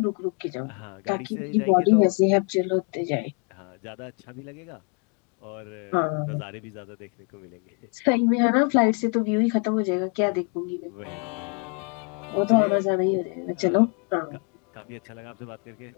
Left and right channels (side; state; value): right; quieter; 36.7 dB